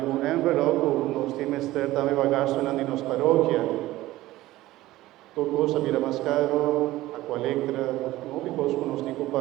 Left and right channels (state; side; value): quieter; left; 16.7 dB